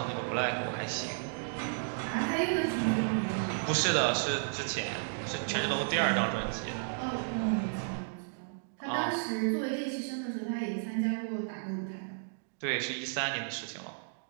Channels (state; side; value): silent; left; digital silence